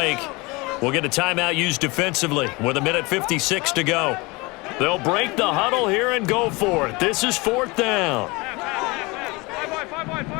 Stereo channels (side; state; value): right; quieter; 25.0 dB